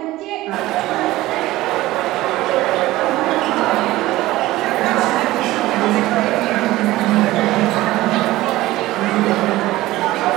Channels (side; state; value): left; quieter; 17.3 dB